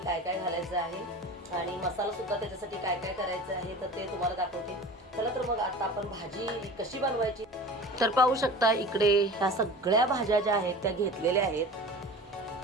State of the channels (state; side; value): normal; both; correlation 0.37